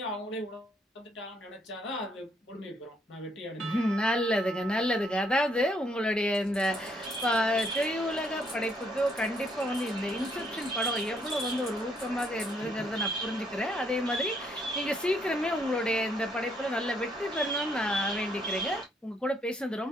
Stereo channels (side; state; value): both; normal; correlation 0.70